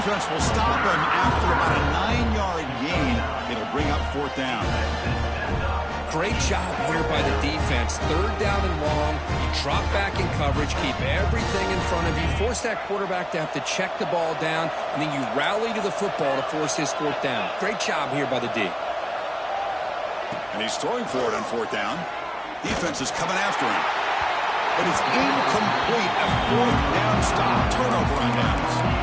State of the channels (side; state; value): both; identical; correlation 1.00